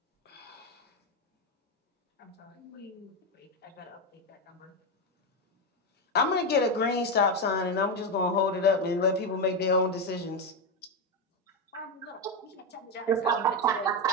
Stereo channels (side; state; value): both; normal; correlation 0.10